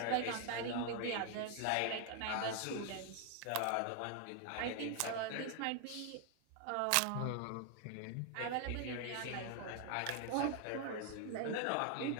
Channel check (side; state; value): both; different; correlation 0.00